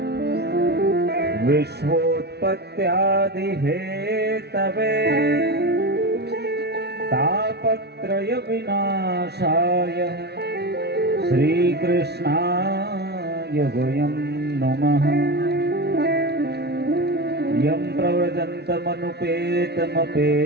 विश्वोत्पत्त्यादि हेतवे तापत्रय विनाशाय श्रीकृष्णाय वयं नमः। यं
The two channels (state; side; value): late; left; 0.49 ms